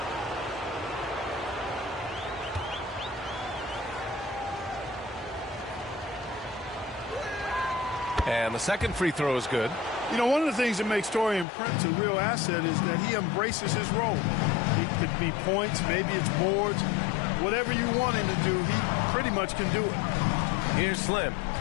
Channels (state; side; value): drops out; right; at 11.5 s